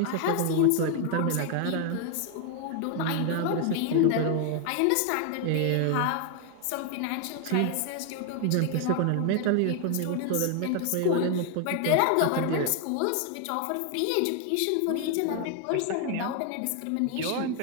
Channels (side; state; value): both; different; correlation 0.00